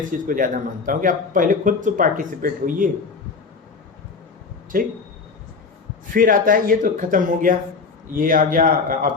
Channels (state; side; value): quieter; right; 4.7 dB